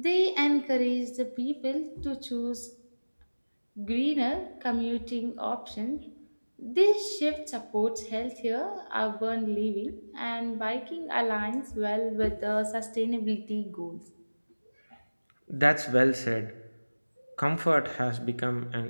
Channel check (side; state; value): both; inverted; correlation -1.00